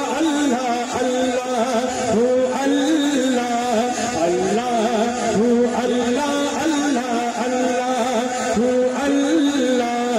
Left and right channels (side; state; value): both; identical; correlation 1.00